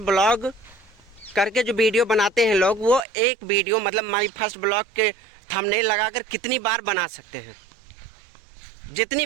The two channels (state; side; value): drops out; left; at 3.1 s